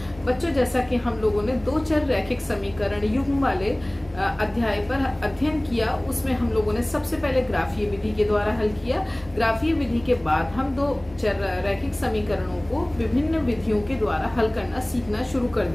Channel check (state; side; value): noise; right; rumble, 22 dB below the sound